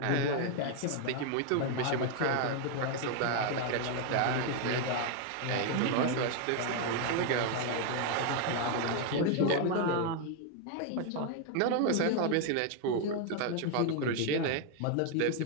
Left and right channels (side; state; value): both; different; correlation 0.01